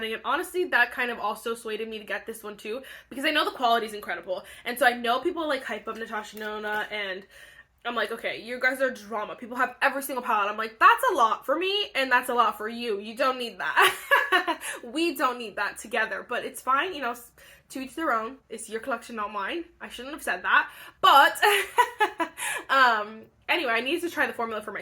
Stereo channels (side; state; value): both; identical; correlation 1.00